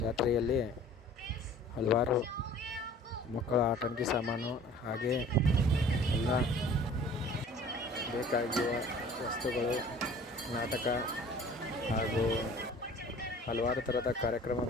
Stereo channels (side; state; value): both; normal; correlation 0.48